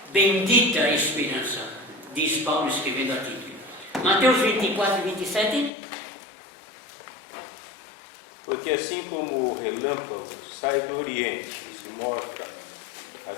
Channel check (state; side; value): drops out; right; at 5.7 s